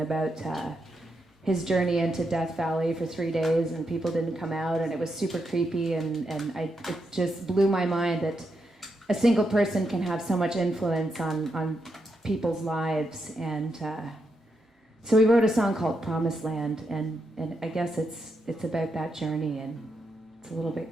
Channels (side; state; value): both; normal; correlation 0.83